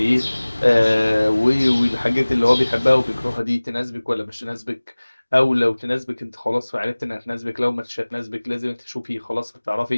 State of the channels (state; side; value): inverted; both; correlation -1.00